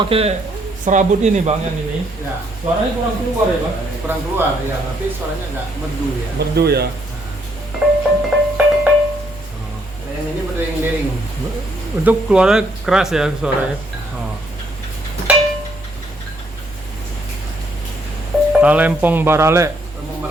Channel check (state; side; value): normal; both; correlation 0.71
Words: serabut ini bang yang ini, Ya. suaranya kurang keluar ya bang? Kurang keluar ya, tapi suaranya nggak merdu ya. Merdu ya. Nah, yang ini berdering-dering. Untuk keluarnya keras ya suaranya. Oh. Talempong Barale Talempong